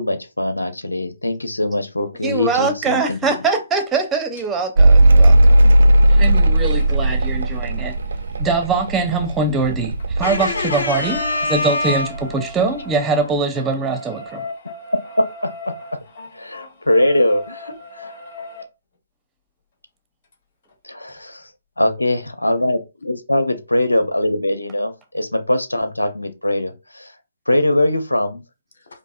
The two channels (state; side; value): inverted; both; correlation -0.71